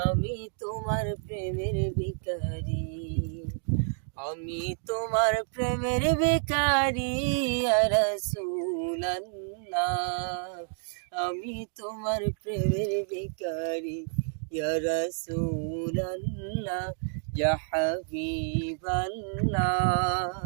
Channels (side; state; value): left; silent; 58 dB below the other